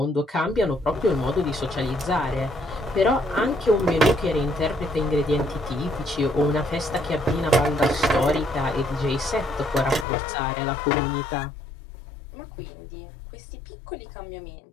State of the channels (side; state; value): right; drops out; at 10.1 s